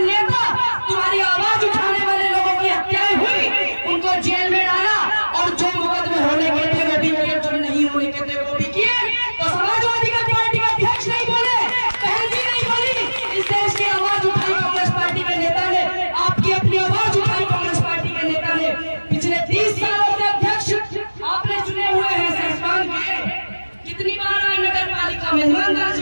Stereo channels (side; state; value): both; inverted; correlation -1.00